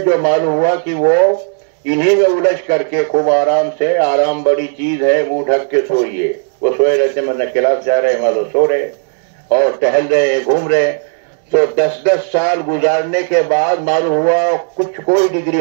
معلوم ہوا کہ وہ انہی میں الجھ کر کے خوب آرام سے، آرام بڑی چیز ہے، منہ ڈھک کے سوئیے، وہ سوئے رہتے مطلب کلاس جا رہے ہیں معلوم سو رہے اور ٹہل رہے ہیں، گھوم رہے ہیں. تو 10 سال گزارنے کے بعد معلوم ہوا کوئی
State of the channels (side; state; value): left; silent; digital silence